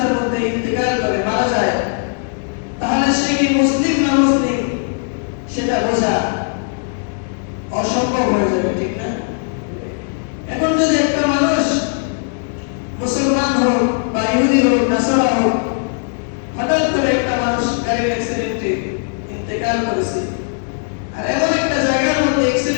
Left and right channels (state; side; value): silent; right; 62 dB below the other